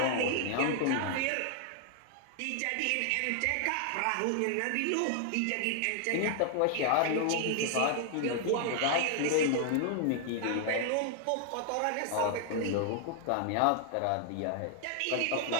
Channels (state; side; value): different; both; correlation 0.00